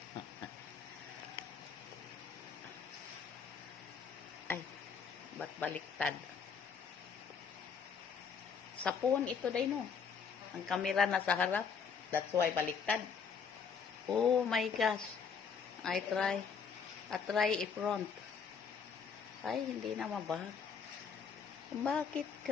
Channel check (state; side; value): quieter; right; 6.2 dB